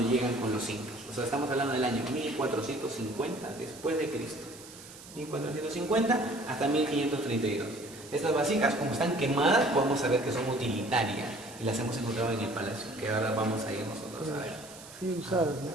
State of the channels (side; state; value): right; noise; hiss, 17 dB below the sound